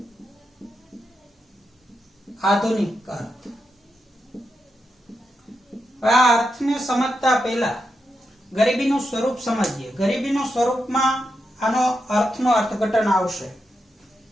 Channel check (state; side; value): normal; both; correlation 0.85